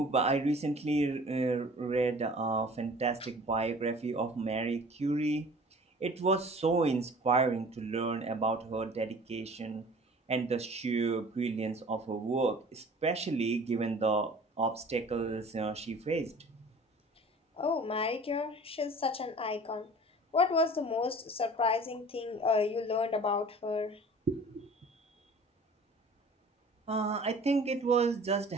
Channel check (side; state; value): both; normal; correlation 0.46